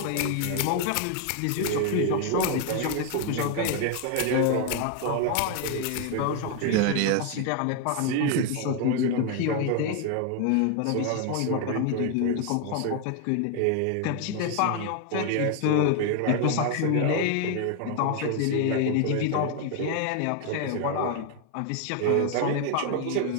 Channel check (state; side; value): different; both; correlation 0.01